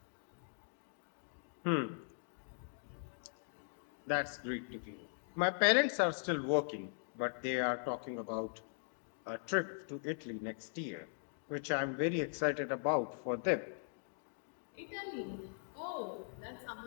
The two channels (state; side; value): silent; right; digital silence